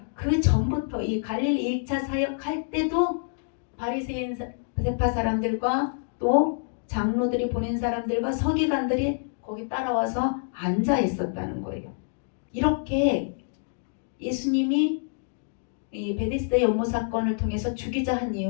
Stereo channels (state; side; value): silent; right; digital silence